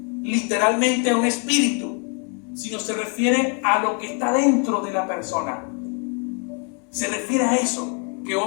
literalmente a un espíritu, sino se refiere a lo que está dentro de la persona. Se refiere a eso, que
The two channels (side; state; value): right; quieter; 38.1 dB